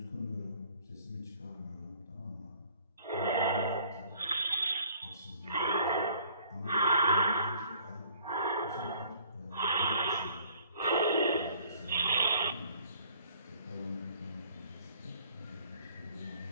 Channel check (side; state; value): both; inverted; correlation -0.57